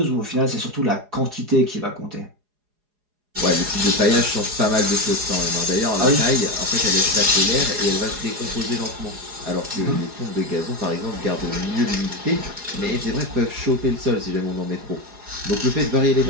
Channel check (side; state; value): left; late; 4.8 ms